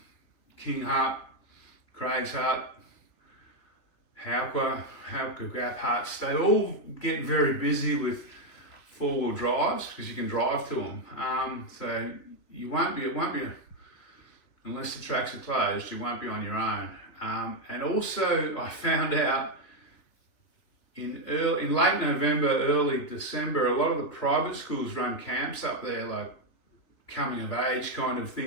King Hut, Craig's Hut, Hauka Gap Huts, they all get very busy with four-wheel drives because you can drive to them. So it won't be, unless the tracks are closed, you won't be on your own. And also I found out in late November, early December, a lot of the private schools run camps up there, like coming of age kind of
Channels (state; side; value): late; right; 3.1 ms